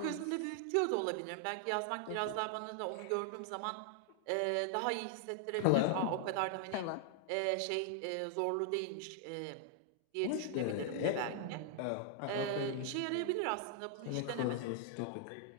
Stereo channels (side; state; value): both; different; correlation -0.01